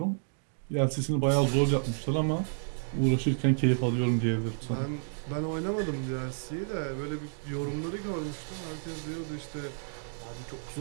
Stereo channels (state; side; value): silent; left; digital silence